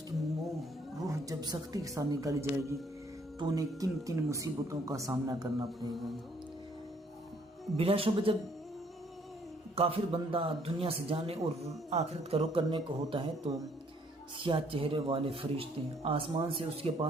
کی روح جب سختی کے ساتھ نکالی جائے گی تو انہیں کن کن مصیبتوں کا سامنا کرنا پڑے گا۔ بلا شبہ جب کافر بندہ دنیا سے جانے اور آخرت کا رخ کرنے کو ہوتا ہے تو سیاہ چہرے والے فرشتے آسمان سے اس کے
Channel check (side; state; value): both; normal; correlation 0.64